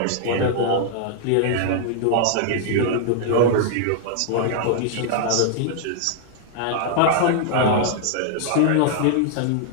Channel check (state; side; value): different; both; correlation -0.01